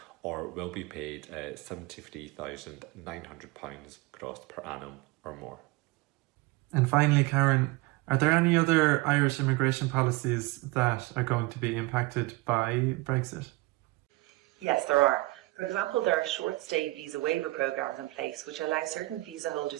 or will be paid £73,900 gross per annum or more. And finally, Karen, are there any other Irish immigration policies that are going to be impacted by Brexit? Yes, there are. For example, there are short-stay visa waiver programs in place which allow certain visa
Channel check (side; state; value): left; quieter; 21.6 dB